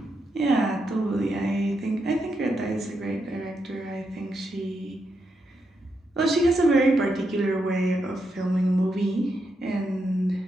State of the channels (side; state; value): both; normal; correlation 0.83